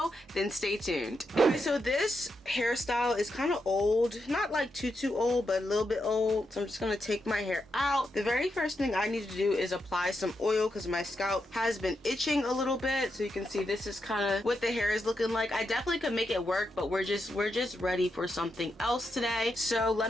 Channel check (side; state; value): both; normal; correlation 0.84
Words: then stay tuned. Okay, so this hairstyle is kind of old. Not like too old, but a little bit old. So I'm just gonna take my hair out. The very first thing I need to do is apply some oil, because my scalp has been itching a little bit. So you can see this is kind of what the hair is looking like. I definitely could make it work, but we're just ready for something else today. So